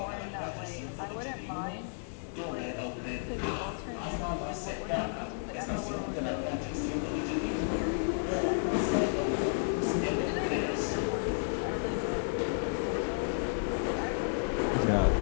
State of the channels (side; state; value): right; silent; 56 dB below the other